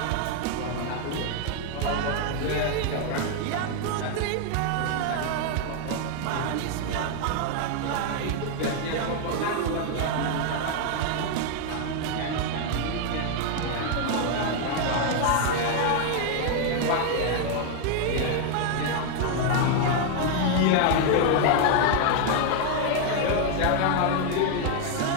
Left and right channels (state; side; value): different; both; correlation 0.00